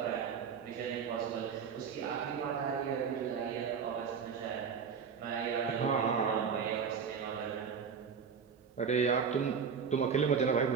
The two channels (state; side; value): quieter; left; 6.5 dB